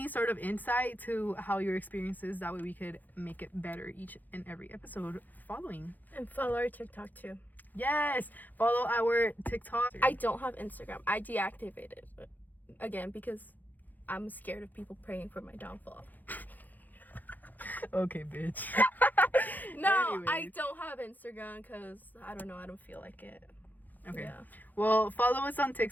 sort of insight to how your experience is. That way we could make it better each and every episode following. And follow our TikTok too. Yes, follow our TikTok. I don't have Instagram. I deactivated it again because I'm scared of people praying for my downfall. Okay, bitch. No, Anyways. I don't have Instagram because I don't know. I don't feel like it. Okay. Yeah. Well, follow us on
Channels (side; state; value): right; late; 0.084 ms